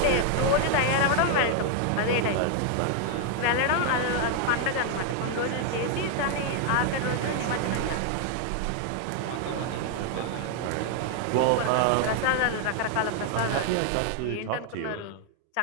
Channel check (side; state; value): both; different; correlation 0.00